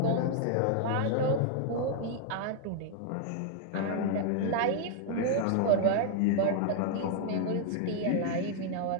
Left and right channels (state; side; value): different; both; correlation 0.00